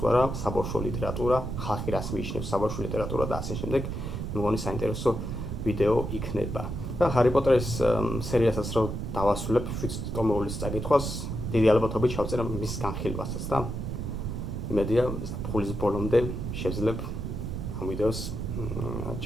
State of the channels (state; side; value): noise; right; rumble, 4 dB below the sound